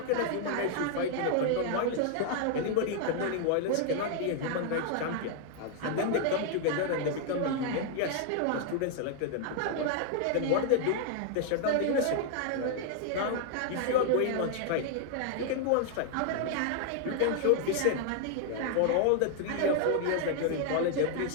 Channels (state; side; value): different; both; correlation 0.00